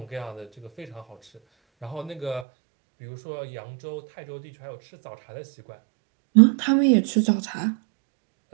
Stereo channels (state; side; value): drops out; left; at 2.5 s